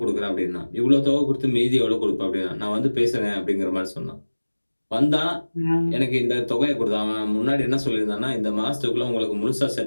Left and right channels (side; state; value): both; inverted; correlation -1.00